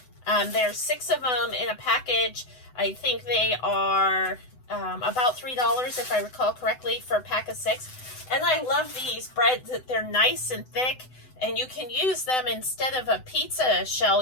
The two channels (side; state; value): right; late; 7.9 ms